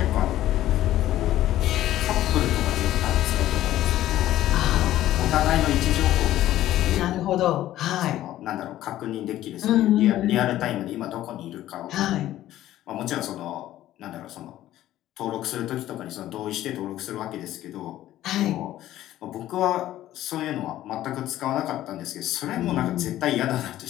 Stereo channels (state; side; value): quieter; right; 13.8 dB